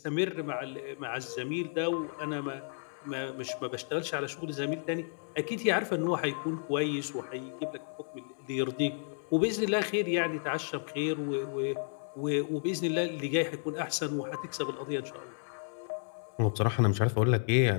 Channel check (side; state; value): right; silent; digital silence